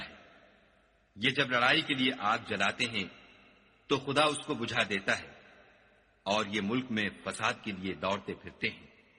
ہے۔ یہ جب لڑائی کے لیے آگ جلاتے ہیں تو خدا اس کو بجھا دیتا ہے، اور یہ ملک میں فساد کے لیے دوڑتے پھرتے ہیں،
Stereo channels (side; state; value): both; identical; correlation 1.00